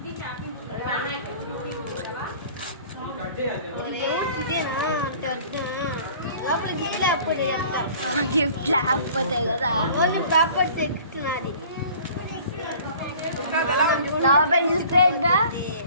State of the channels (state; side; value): inverted; both; correlation -0.48